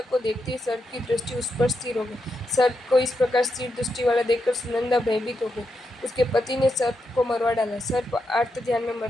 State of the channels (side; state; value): both; normal; correlation 0.84